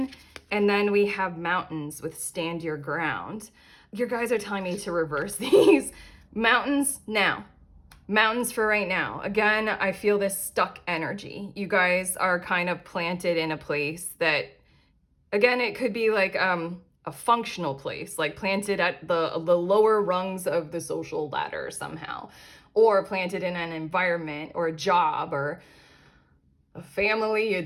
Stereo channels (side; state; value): both; identical; correlation 1.00